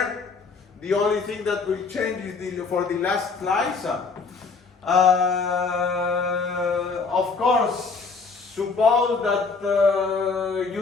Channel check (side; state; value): right; quieter; 4.6 dB